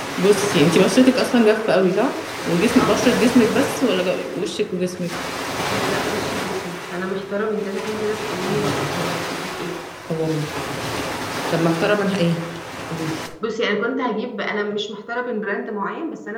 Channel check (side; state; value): both; identical; correlation 1.00